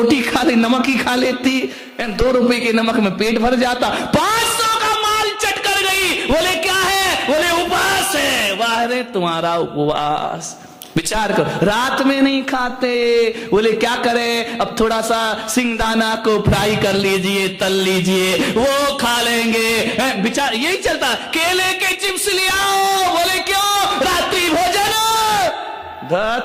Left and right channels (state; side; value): identical; both; correlation 1.00